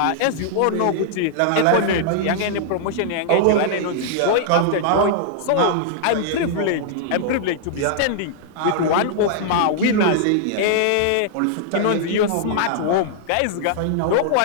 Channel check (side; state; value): both; different; correlation -0.01